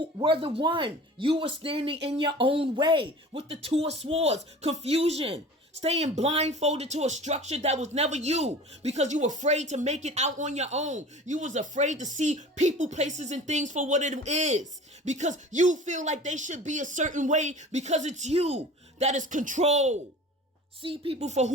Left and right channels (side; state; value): both; normal; correlation 0.41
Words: were the one. You were standing in your own way with the Two of Swords, confusion, staying blindfolded to a structure that was never you because you were afraid to make it out on your own. You was afraid to see people, places, and things for what it is because you feel like they should be a certain way because it's you that is control. See people for